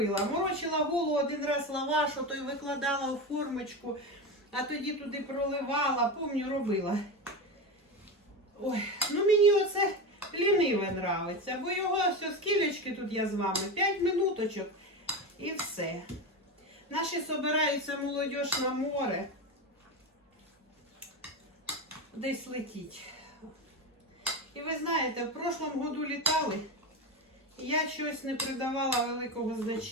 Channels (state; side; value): normal; both; correlation 0.20